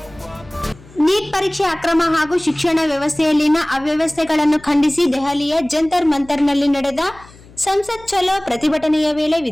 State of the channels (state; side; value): noise; left; hum, 23 dB below the sound